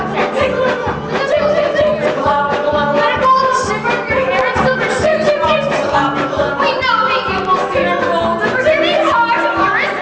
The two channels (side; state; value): both; identical; correlation 1.00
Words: chip, chip, chip, pickle out, pickle out. Let it go, shiver your hair in silver shoes, chip, chip, pickle out, pickle out. We know that you will steer gold, the Virginia heart of your is